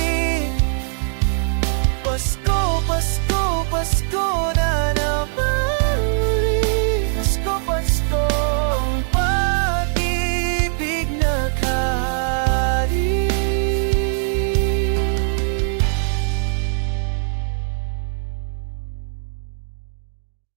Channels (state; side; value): silent; left; digital silence